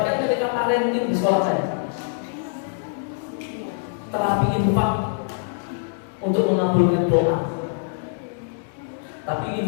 ketika parenting di sekolah saya. Terapi infak untuk mengabulkan doa, tapi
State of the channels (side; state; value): right; silent; digital silence